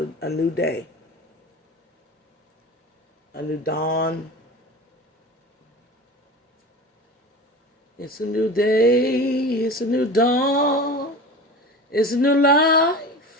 a new day. A new dawn. It's a new day. It's a new dawn. It's a new life.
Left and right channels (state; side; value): normal; both; correlation 0.33